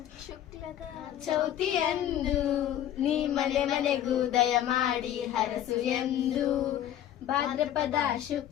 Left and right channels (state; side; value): quieter; right; 11.3 dB